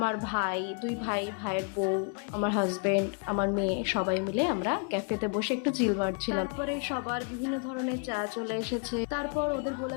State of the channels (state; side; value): quieter; right; 38.8 dB